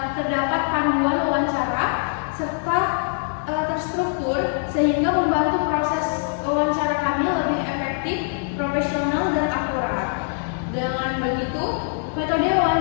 terdapat panduan wawancara serta terstruktur sehingga membantu proses wawancara kami lebih efektif, profesional dan akurat. Dengan begitu, metode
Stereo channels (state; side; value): silent; right; 63 dB below the other